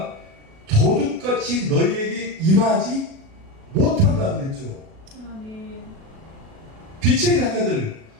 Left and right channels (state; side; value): late; left; 37 ms